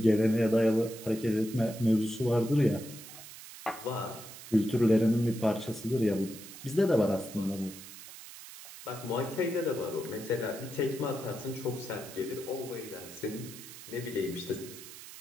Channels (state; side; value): noise; right; hiss, 15 dB below the sound